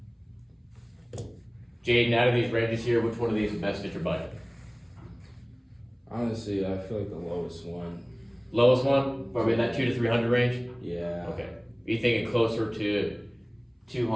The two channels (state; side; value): identical; both; correlation 1.00